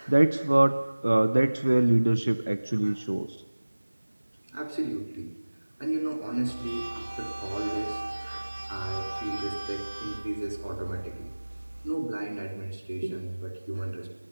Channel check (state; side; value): inverted; both; correlation -1.00